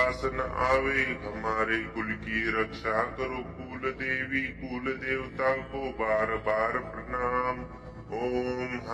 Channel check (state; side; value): identical; both; correlation 1.00